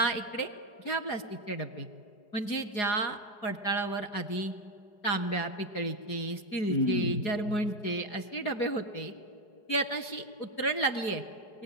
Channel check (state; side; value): late; right; 4.8 ms